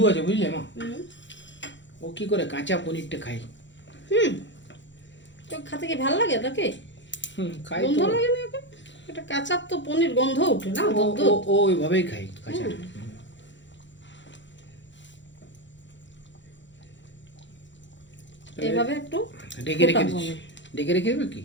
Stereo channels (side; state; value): right; late; 0.54 ms